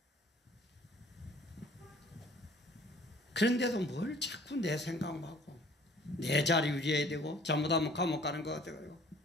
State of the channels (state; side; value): normal; both; correlation 0.54